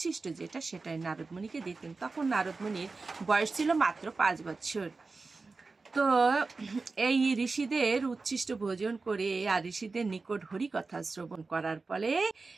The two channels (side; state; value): left; quieter; 4.0 dB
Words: যেটা, সেটাই নারদ মুনিকে দিতেন। তখন নারদ মুনির বয়স ছিল মাত্র 5 বছর। তো এই ঋষিদের উচ্ছিষ্ট ভোজন করে আর ঋষিদের নিকট হরি কথা শ্রবণ করার ফলে